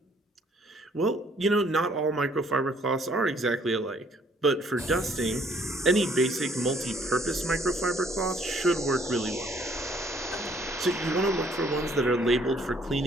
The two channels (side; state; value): both; normal; correlation 0.63